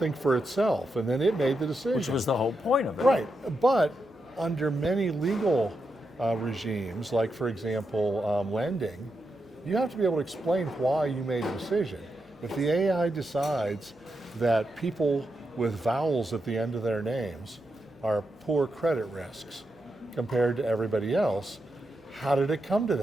for itself, and then it made the decision. Which was the whole point of it. Right, but under many legal regimes, like for example, lending, you have to be able to explain why you made a decision. If the AI decides that people with vowels at the end of their names are poor credit risks compared to everybody else, how did it come to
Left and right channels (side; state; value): both; normal; correlation 0.86